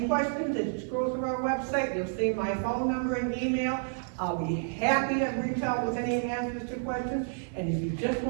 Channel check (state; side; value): silent; left; 58 dB below the other